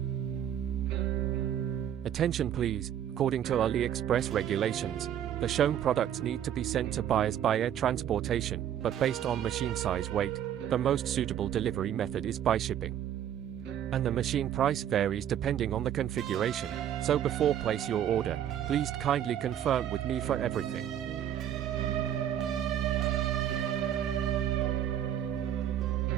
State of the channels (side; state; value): left; quieter; 10.3 dB